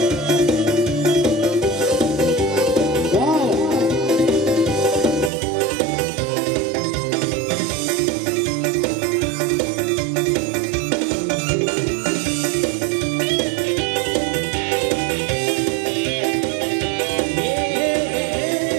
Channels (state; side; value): drops out; left; at 5.3 s